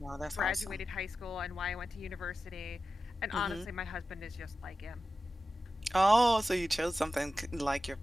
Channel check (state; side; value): normal; both; correlation 0.93